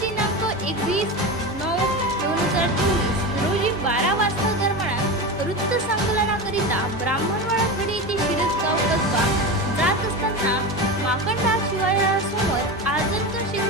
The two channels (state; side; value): normal; both; correlation 0.23